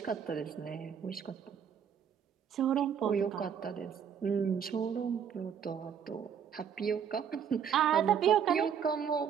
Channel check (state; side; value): quieter; left; 7.9 dB